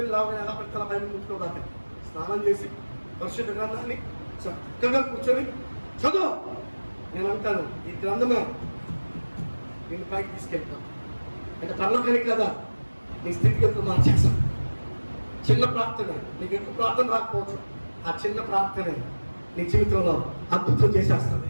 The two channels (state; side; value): inverted; both; correlation -1.00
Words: లాగా ఎలా పెడతా బైబిల్ ముట్టుకోదాకా స్నానం చేసి పరిశుద్ధ గ్రంథాన్ని చక్కగా కూర్చొని చదువు. నేను అంటాను, ఈ గ్రంథమే నేను పైకి తీసుకెళ్తాను. అంటే తనలోకని కదా నీ స్థితిగతులు మార్చేస్తాను. చిన్న ప్రార్థన, నీకు ఎక్కువ ప్రార్థన రాకపోవచ్చు, ఆ చిన్న ప్రార్థనే నీ జీవితంలో అద్భుతం చేసేస్తుంది.